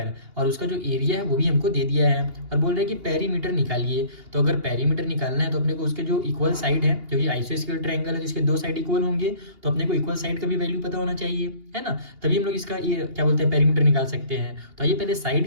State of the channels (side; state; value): left; late; 2.8 ms